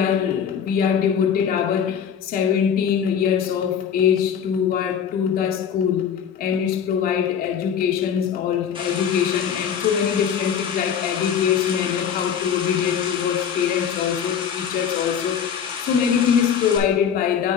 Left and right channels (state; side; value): quieter; right; 8.0 dB